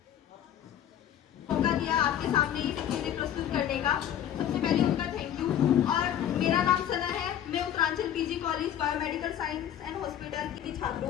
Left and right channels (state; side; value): quieter; right; 10.4 dB